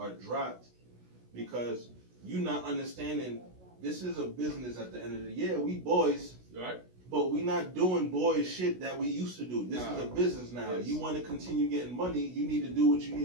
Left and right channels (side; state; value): left; late; 16 ms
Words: dropped, because you not understanding this is a business at the end of the year. We boys, Right? but we not doing boys shit that we used to do. This is a business now. Yes. You want to continue getting money, you need to do what you